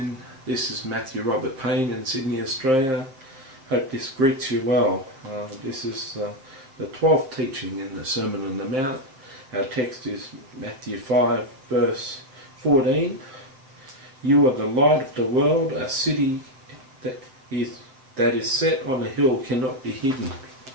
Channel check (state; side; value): late; left; 7.6 ms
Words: This is Matthew Robert Payne in Sydney, Australia. Hope this greets you well. This is the 12th teaching in the Sermon on the Mount. Our text is Matthew 5 verse 14. You are the light of the world. A city that is set on a hill cannot be hidden.